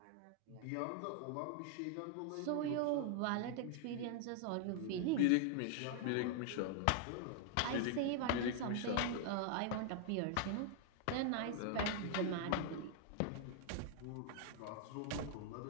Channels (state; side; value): different; both; correlation -0.01